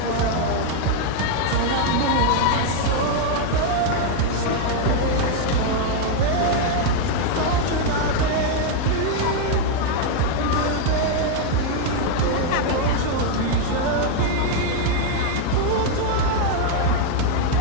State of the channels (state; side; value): different; both; correlation 0.00